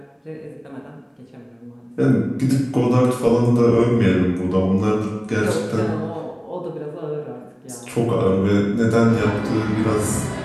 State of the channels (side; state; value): both; identical; correlation 1.00